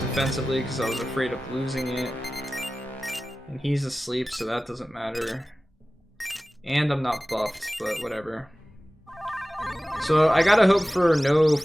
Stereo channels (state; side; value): normal; both; correlation 0.96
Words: defensively because I was afraid of losing it. And he's asleep, so that doesn't matter. And I'm not buffed, but whatever. So I gotta hope for no